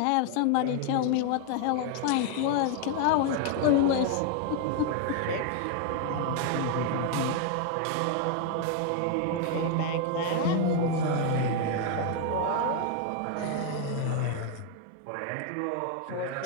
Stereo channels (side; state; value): both; different; correlation 0.00